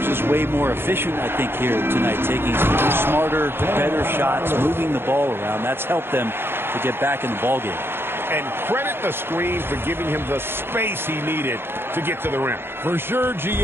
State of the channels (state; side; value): late; left; 0.11 ms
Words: just way more efficient, I think, here tonight, taking smarter, better shots, moving the ball around. That's helped them to get back in the ballgame. And credit the screen for giving him the space he needed to get to the rim. For sure,